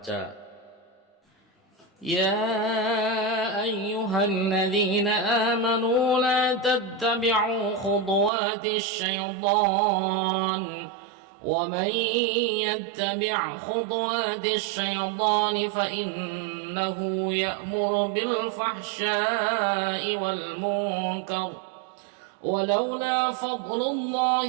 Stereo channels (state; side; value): drops out; left; at 8.3 s